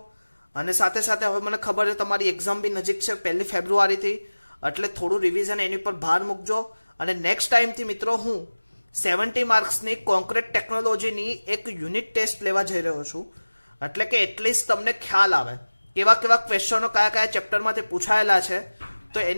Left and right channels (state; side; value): inverted; both; correlation -1.00